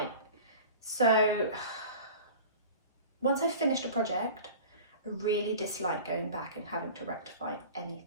So once I've finished a project, I really dislike going back and having to rectify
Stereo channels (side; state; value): both; inverted; correlation -0.38